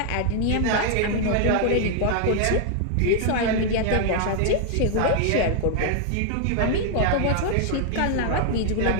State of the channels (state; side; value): different; both; correlation 0.00